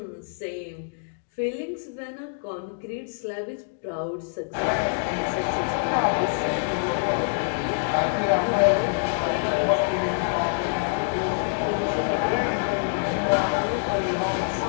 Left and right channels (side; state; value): right; silent; digital silence